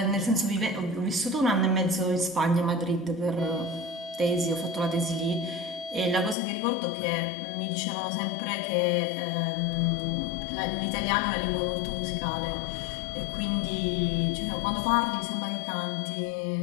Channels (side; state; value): right; drops out; at 6.4 s